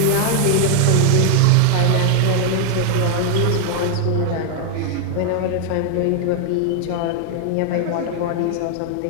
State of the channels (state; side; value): different; both; correlation 0.00